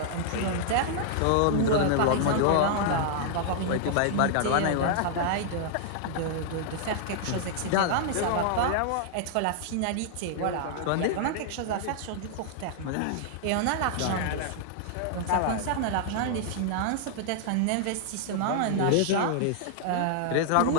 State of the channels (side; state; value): both; different; correlation -0.01